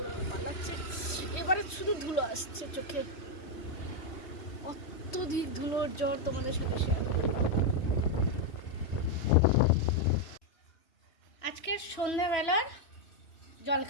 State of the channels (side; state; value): right; late; 3.1 ms